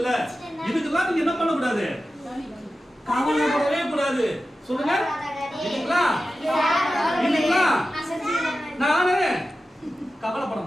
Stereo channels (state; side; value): normal; both; correlation 0.93